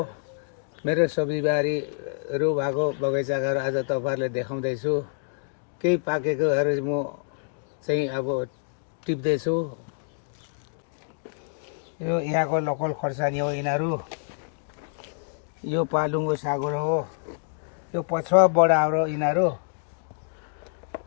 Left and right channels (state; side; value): silent; right; digital silence